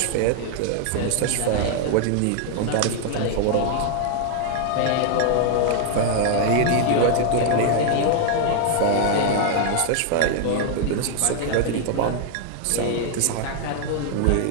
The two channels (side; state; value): both; different; correlation 0.00